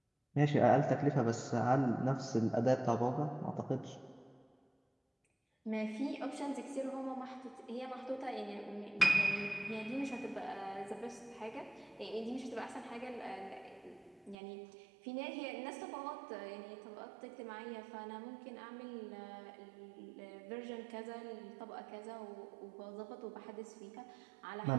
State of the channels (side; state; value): left; drops out; at 14.4 s